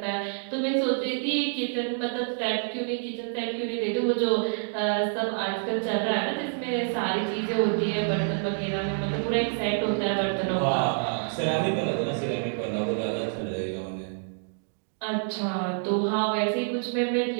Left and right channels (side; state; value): left; silent; digital silence